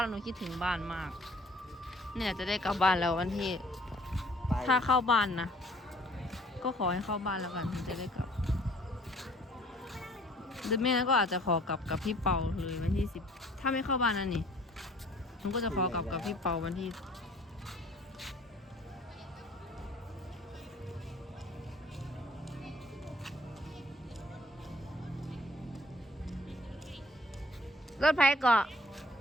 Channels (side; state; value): both; normal; correlation 0.55